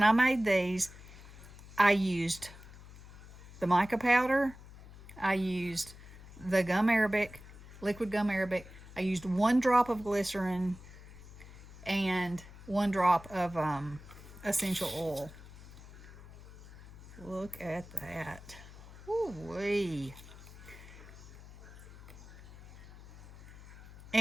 I made these, I used the mica powder. I used the gum arabic, liquid gum arabic. I used 1 drop of glycerin and 1 drop of essential oil. Look at that. Woo-wee.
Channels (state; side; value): noise; left; hum, 17 dB below the sound